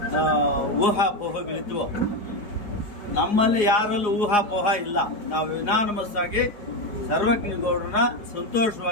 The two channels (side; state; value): right; late; 4.8 ms